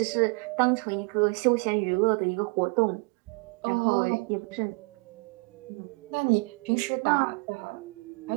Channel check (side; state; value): left; quieter; 31.7 dB